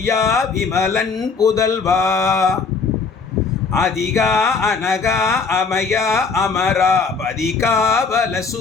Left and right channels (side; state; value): right; quieter; 4.9 dB